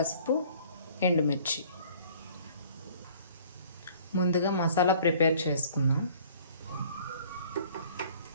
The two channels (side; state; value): both; inverted; correlation -0.53